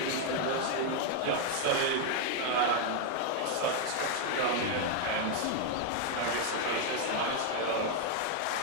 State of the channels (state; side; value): different; both; correlation 0.00